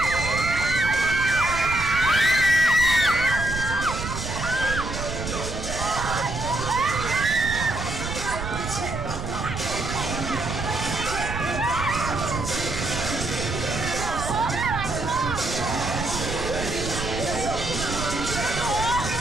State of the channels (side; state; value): right; noise; rumble, 6 dB below the sound